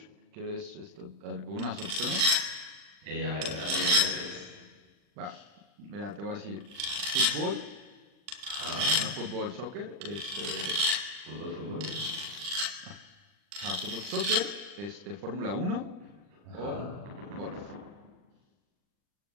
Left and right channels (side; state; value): left; late; 40 ms